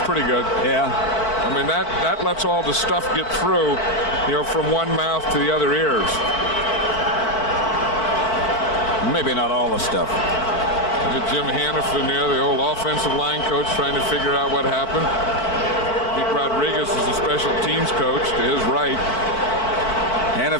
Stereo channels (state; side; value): late; right; 4.5 ms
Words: pretty good. Yeah. I mean, that lets all the stuff get through, from one mouth to the other ears. Maybe not all the stuff. Look at Jim Hannafin there, the old offensive line coach, trying to figure out what happened. Pete Rodriguez is the special teams coach to his right.